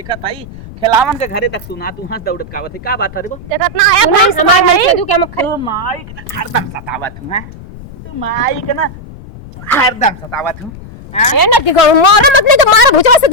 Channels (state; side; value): noise; left; rumble, 16 dB below the sound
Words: हई खिलावन के घरे तक सुना तू हंस दौड़त कावत है का बात है रे वो देखत ना आया भाई हमार नहीं तू के हम तू माई के ना हरदम सतावत हूं हैं तू माई के ना हरदम सतावत हूं ए ना दिगो मार मत नहीं तो मार भुजवा से